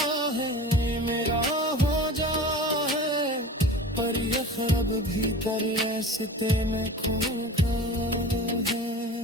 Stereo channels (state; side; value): normal; both; correlation 0.36